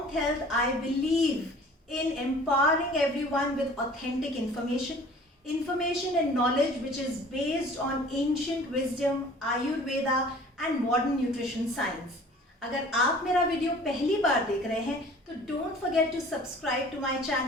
health I believe in empowering everyone with authentic information and knowledge which is based on ancient wisdom, Ayurveda and modern nutrition science. अगर आप मेरा वीडियो पहली बार देख रहे हैं तो don't forget to subscribe to my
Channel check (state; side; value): normal; both; correlation 0.48